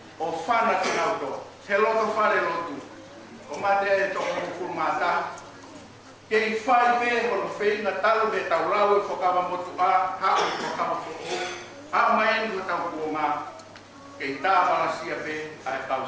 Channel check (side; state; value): both; identical; correlation 1.00